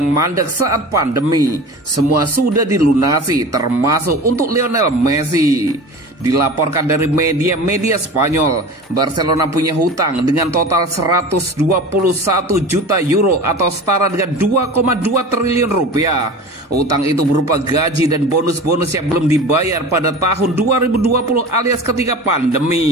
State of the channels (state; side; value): normal; both; correlation 0.35